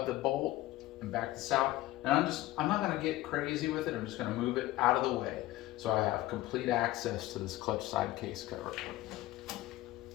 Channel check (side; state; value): right; quieter; 16.5 dB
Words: the bolt and back this out. And I'm not going to get crazy with it. I'm just going to move it out of the way so I have complete access to this clutch side case cover.